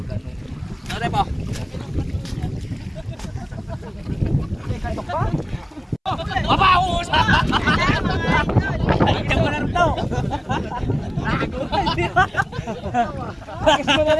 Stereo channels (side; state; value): both; identical; correlation 1.00